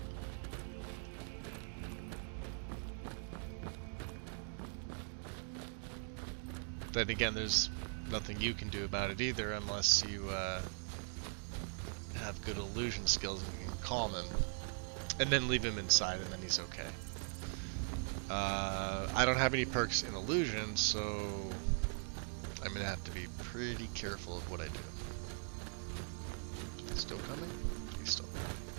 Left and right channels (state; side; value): silent; left; 51 dB below the other